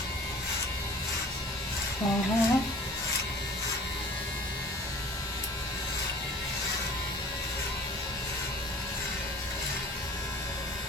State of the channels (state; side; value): normal; both; correlation 0.47